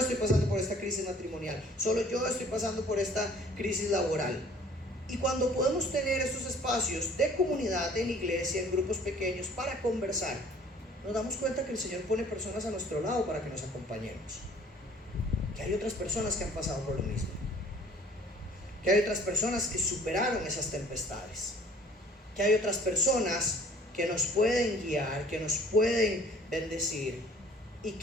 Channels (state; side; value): normal; both; correlation 0.54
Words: pasando por esta crisis matrimonial, solo yo estoy pasando por esta crisis laboral. Y cuando podemos tener estos espacios de comunidad en iglesia, en grupos pequeños, para conversar, nos damos cuenta que el Señor pone personas a nuestro lado para que nos acompañemos. Que hay otras personas que han pasado por lo mismo. Que hay otras personas que superaron esas tempestades. Que hay otras personas que nos pueden guiar, que nos pueden bendecir y